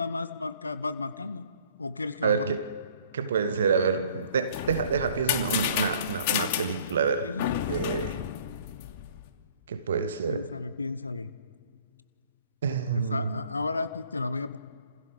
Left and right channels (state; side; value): inverted; both; correlation -0.55